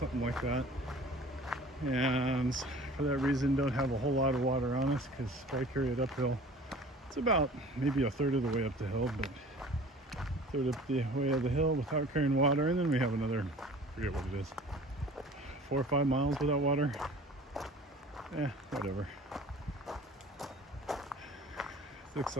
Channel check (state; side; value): normal; both; correlation 0.45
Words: like that. And for that reason, don't have a whole lot of water on us because if I carry it uphill, it's about maybe a third of the way up the hill, but a third up the way of the hill without carrying water. And then we have another, I forget what it is, 4 or 5 miles without water. Whatever. Looks